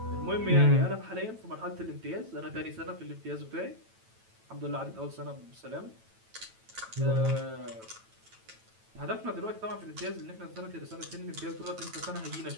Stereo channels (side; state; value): left; late; 9.0 ms